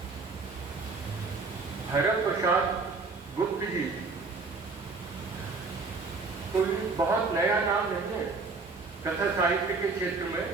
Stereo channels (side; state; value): left; quieter; 4.1 dB